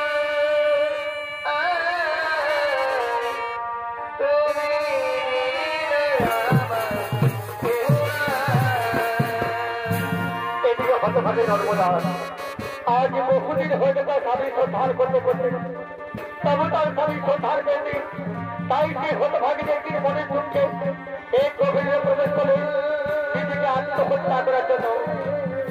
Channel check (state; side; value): identical; both; correlation 1.00